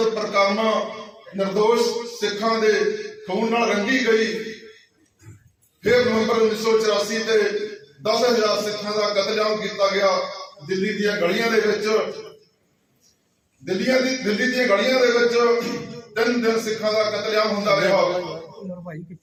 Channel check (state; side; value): identical; both; correlation 1.00